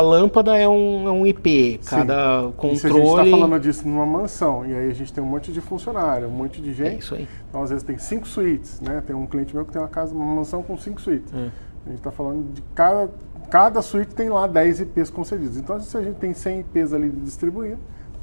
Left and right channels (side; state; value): both; inverted; correlation -1.00